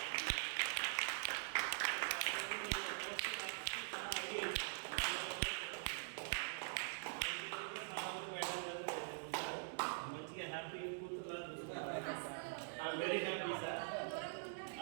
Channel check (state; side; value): silent; left; digital silence